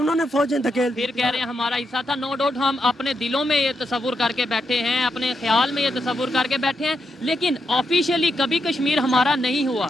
फौजें धकेल दी। फिर कह रहे हैं हमारा हिस्सा था। नो डाउट हम अपने दिलों में ये तस्वुर करके बैठे हैं, अपने ख्याल में ये तस्वुर करके बैठे हैं, लेकिन ऑफिशियली कभी कश्मीर हमारा नहीं हुआ।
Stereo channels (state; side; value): normal; both; correlation 0.83